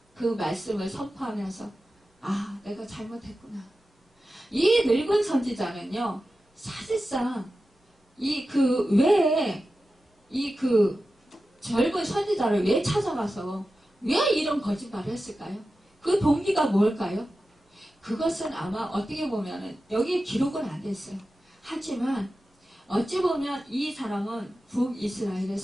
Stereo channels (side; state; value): both; normal; correlation 0.93